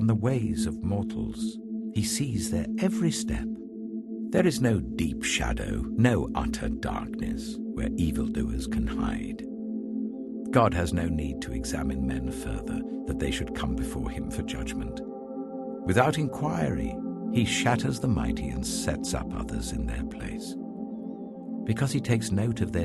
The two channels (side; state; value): both; identical; correlation 1.00